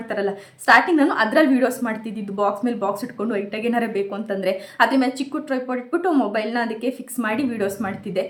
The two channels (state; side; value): identical; both; correlation 1.00